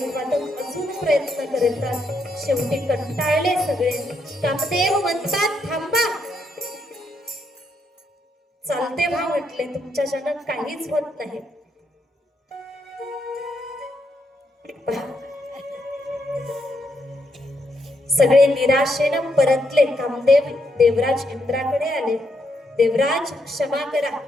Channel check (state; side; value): normal; both; correlation 0.78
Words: वादक अजून प्रयत्न करतात. शेवटी कंटाळले सगळे. कामदेव म्हणतात, थांबा. चालते व्हा म्हटले, तुमच्याच्यानं काहीच होत नाही. सगळे निराशेनं परतले. कामदेव देवराज इंद्राकडे आले. देवराज क्षमा करा,